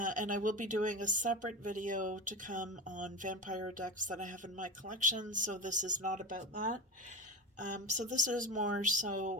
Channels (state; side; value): normal; both; correlation 0.23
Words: I will be doing a separate video to come on vampire decks that I have in my collection, so this is not about that. So this is more